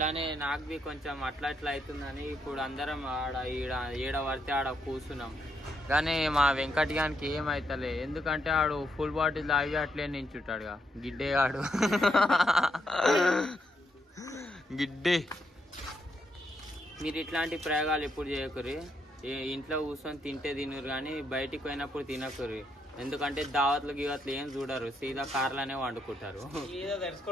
నాకు బి కొంచెం అట్లా అవుతుందని ఇప్పుడు అందరం ఆడ ఈడ పడితే ఆడ కూర్చున్నాం. కానీ మా వెంకట్ గానికి ఏమైతలే. ఎందుకంటే ఆడు ఫుల్ బాటిల్ తాగి అట్లే నించుంటాడుగా గిడ్డేగాడు. గిడ్డే. మీరు ఇట్లాంటి ప్రయోగాలు ఎప్పుడు చేయకూరి. ఇంట్లో కూర్చొని తింటే తినరు కానీ బయటికి పోయినప్పుడు తినకూరి. ఎందుకంటే దావత్లు గివత్లు ఏం చూడరు. సీదా కార్లనే వండుకుంటారు.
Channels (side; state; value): both; normal; correlation 0.78